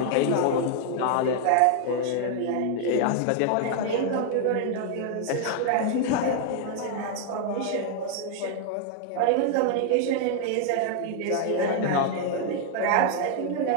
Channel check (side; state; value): both; different; correlation 0.00